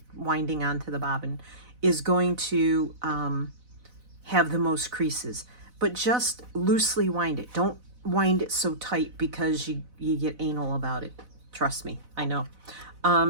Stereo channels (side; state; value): left; late; 4.0 ms